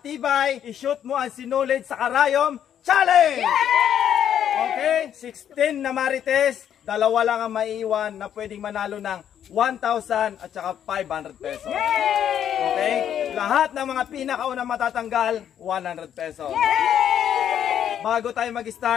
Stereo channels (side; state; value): right; quieter; 9.6 dB